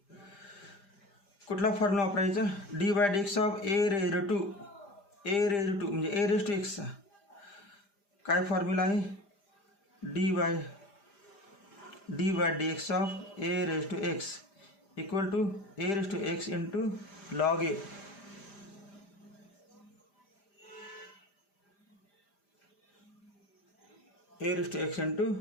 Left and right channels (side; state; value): right; late; 5.0 ms